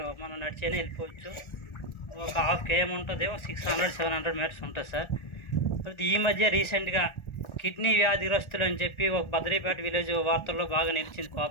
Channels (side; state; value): right; late; 1.4 ms